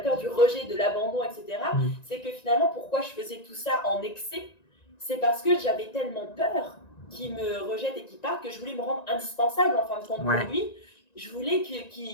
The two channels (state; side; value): late; right; 1.9 ms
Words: du rejet, de l'abandon, etc., Mm. c'est que finalement, pourquoi je faisais tout ça en excès, c'est parce que j'avais tellement peur qu'il me rejette et qu'il parte que je voulais me rendre indispensable en fin de compte pour Ouais. lui. Je voulais qu'il